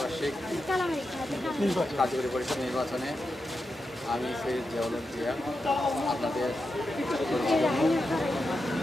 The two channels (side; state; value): both; normal; correlation 0.88